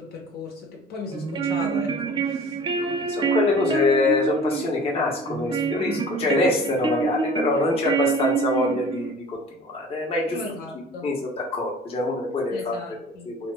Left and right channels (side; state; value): both; normal; correlation 0.45